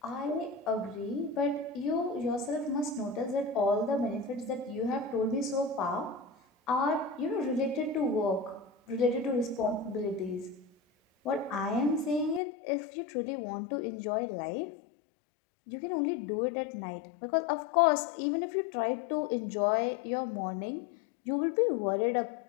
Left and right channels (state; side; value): drops out; right; at 12.4 s